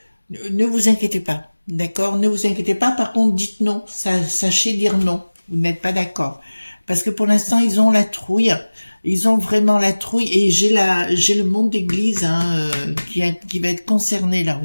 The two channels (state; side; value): inverted; both; correlation -1.00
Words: vous inquiétez pas, d'accord? Ne vous inquiétez pas, par contre, dites non. Sachez dire non. Vous n'êtes pas d'accord. Parce que pour l'instant, ils ont la trouille. Ils ont vraiment la trouille. Et j'ai le monde d'église hein, qui va être concerné là